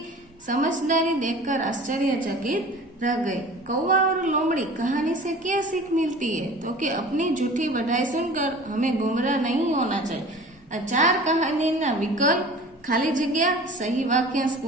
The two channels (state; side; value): normal; both; correlation 0.42